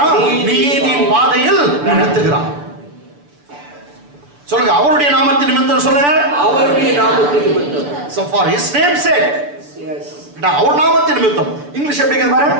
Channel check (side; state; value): left; late; 6.9 ms